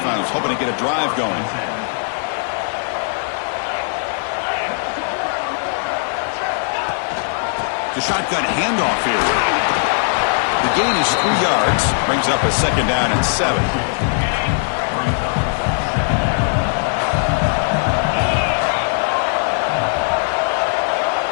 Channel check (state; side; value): silent; right; 67 dB below the other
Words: hoping to get a drive going. The shotgun handoff here. The gain is 3 yards. Brings up a second down and 7.